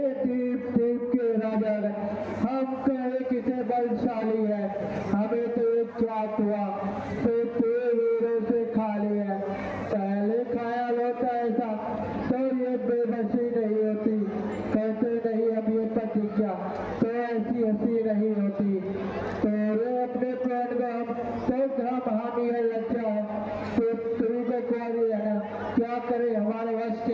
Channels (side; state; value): both; identical; correlation 1.00